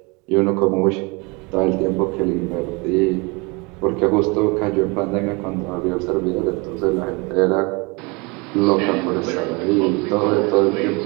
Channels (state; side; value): quieter; left; 28.3 dB